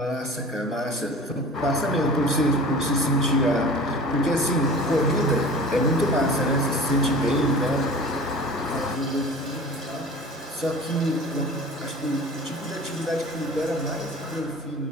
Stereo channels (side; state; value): both; normal; correlation 0.40